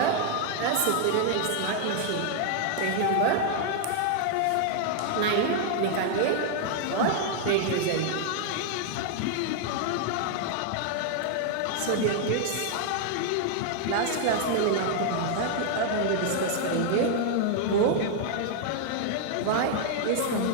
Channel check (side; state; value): both; different; correlation 0.00